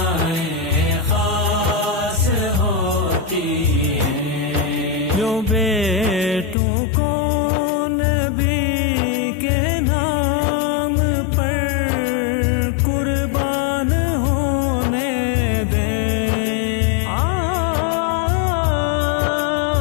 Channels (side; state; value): right; drops out; at 6.6 s